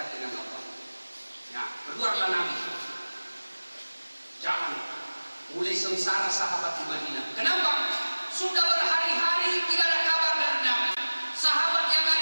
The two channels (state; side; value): inverted; both; correlation -1.00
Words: dengan Allah. Ya, keluarlah Nabi. Jangan mulai sengsara sahabat di Madinah. Kenapa? Sudah berhari-hari tidak ada kabar dari Nabi. Sahabat yang